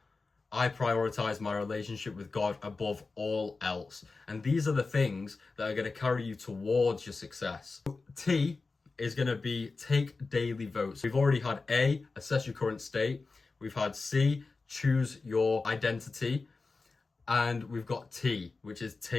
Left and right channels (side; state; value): right; quieter; 4.0 dB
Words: I prioritize my relationship with God above all else. And these are the things that are going to carry you towards your success. T is going to be take daily votes. We've already had A, assess your current state. We've had C, choose your identity. And we've got T, which is